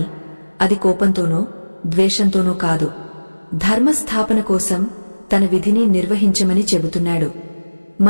అది కోపంతోనో ద్వేషంతోనో కాదు. ధర్మస్థాపన కోసం తన విధిని నిర్వహించమని చెబుతున్నాడు.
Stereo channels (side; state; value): both; inverted; correlation -1.00